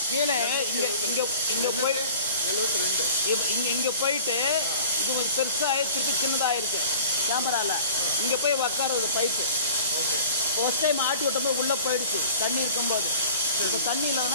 கீழே இங்கே போய் 72 இங்கே போயிட்டு இது கொஞ்சம் பெருசாக திருப்பி சின்னதாகிருக்கு கேமராவில் இங்கே போய் உக்காருது பைப்பு ஃபர்ஸ்ட் டைம் ஆட்டி விட்டபோது உள்ளே போயிடுச்சு தண்ணி இருக்கும்போது இப்போ தண்ணி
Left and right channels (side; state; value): both; inverted; correlation -0.44